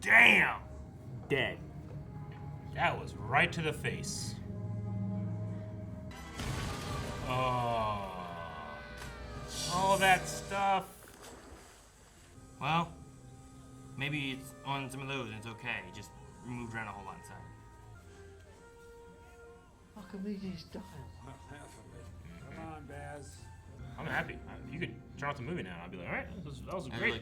Dead. That was right to the face. Oh. All that stuff. Well, maybe it's on some of those and it's okay. It just moved around a whole lot inside. Archimedes style. Half of it. Come on, Baz. I'm happy. If you could turn off the movie now, I'd be like, all right, that was That's great. really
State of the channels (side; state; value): both; identical; correlation 1.00